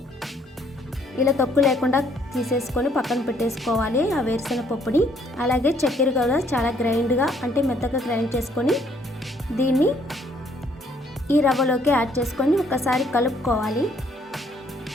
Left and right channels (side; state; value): both; normal; correlation 0.65